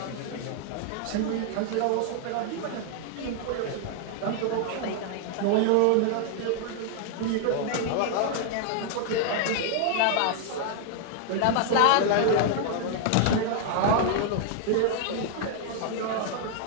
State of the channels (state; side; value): different; both; correlation 0.00